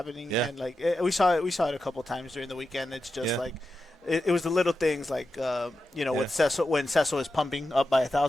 Yeah. And, we saw it a couple times during the weekend. It's just, it was the little things with when Cecil is pumping up by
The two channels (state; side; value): normal; both; correlation 0.89